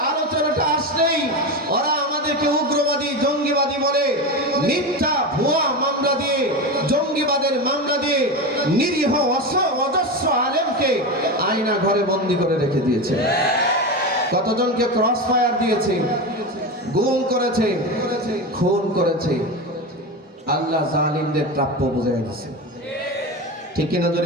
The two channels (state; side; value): normal; both; correlation 0.20